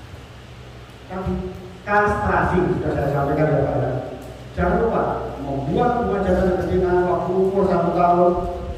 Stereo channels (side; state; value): both; identical; correlation 1.00